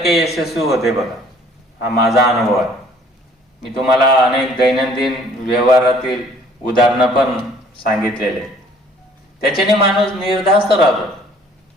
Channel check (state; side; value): normal; both; correlation 0.56